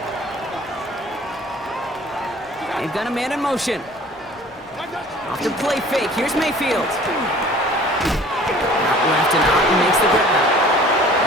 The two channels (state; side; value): normal; both; correlation 0.49